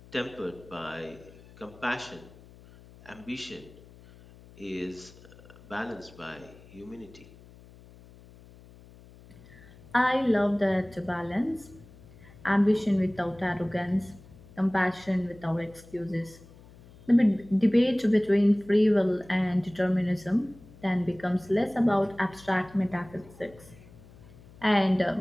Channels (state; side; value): noise; left; hum, 22 dB below the sound